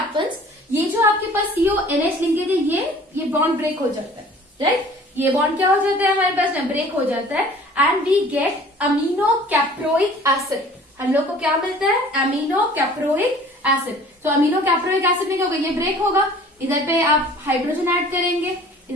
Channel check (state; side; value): normal; both; correlation 0.49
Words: ये जो आपके पास CONH लिंकेज है ये बॉन्ड ब्रेक हो जाता है, राइट? ये बॉन्ड क्या हो जाता है हमारे पास में? ब्रेक हो जाता है and we get amino caproic acid. हम लोग को क्या मिलता है? Amino caproic acid. तो अमीनो कैप्रोइक एसिड में क्या होगा? ये ब्रेक होगा, इधर पे आप हाइड्रोजन ऐड करेंगे,